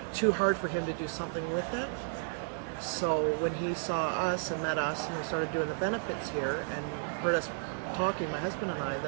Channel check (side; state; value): left; silent; digital silence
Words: too hard for him to do something with it. So when he saw us and met us and we started doing the benefits here and heard us talking, my husband and I,